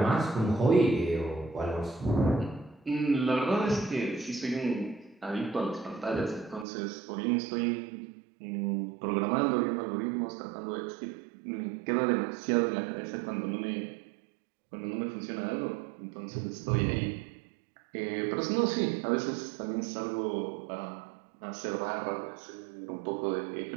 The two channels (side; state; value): left; drops out; at 6.7 s